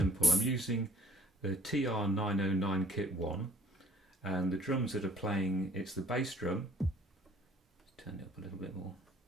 I'm using the TR-909 Kit 1, and the drums that are playing, it's the bass drum. Let's turn it up a little bit more.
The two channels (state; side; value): normal; both; correlation 0.57